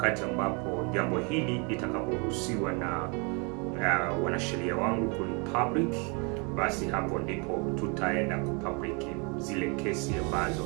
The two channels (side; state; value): left; quieter; 31.9 dB